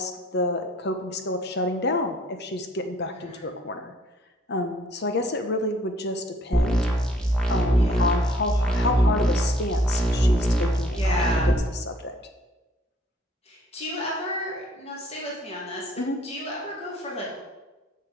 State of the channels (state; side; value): normal; both; correlation 0.60